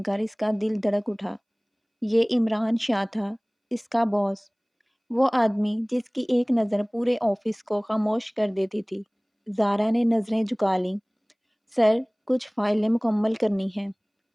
کر اس کا دل دھڑک اٹھا۔ یہ عمران شاہ تھا، اس کا باس، وہ آدمی جس کی ایک نظر پورے آفس کو خاموش کر دیتی تھی۔ زارا نے نظریں جھکا لیں۔ سر، کچھ فائلیں مکمل کرنی ہیں۔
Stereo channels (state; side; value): identical; both; correlation 1.00